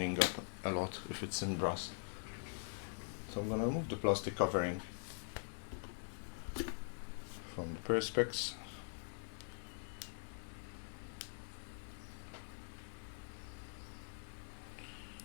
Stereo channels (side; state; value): right; silent; digital silence